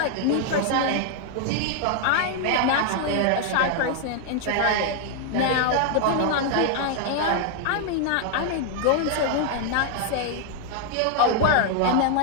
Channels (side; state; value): both; different; correlation 0.00